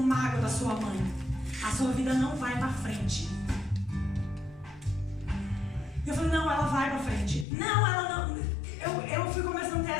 da sua mãe. A sua vida não vai pra frente. Eu falei, não, ela vai pra frente. Não, ela não. Eu fui começando a ter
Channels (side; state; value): right; drops out; at 7.5 s